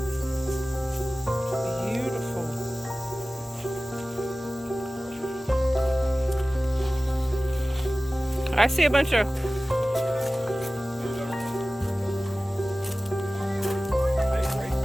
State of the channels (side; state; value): both; normal; correlation 0.97